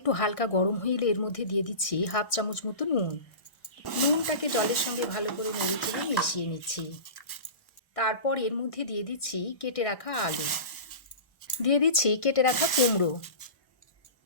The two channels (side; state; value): right; late; 1.1 ms